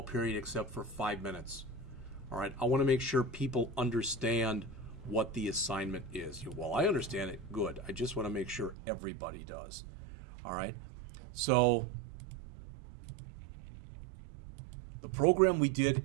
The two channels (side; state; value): left; drops out; at 8.8 s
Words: period except for 5 minutes. All right, I want to make sure people understand what the assignment is. Well, I understand it, good. I just want to make sure everybody does. All right, so the program we